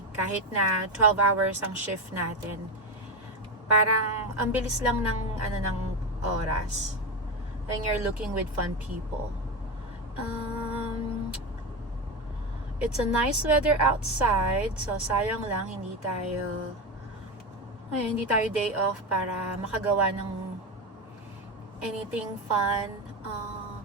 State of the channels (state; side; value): normal; both; correlation 0.16